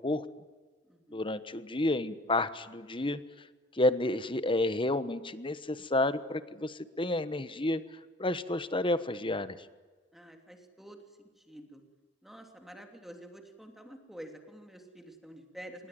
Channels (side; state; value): both; normal; correlation 0.48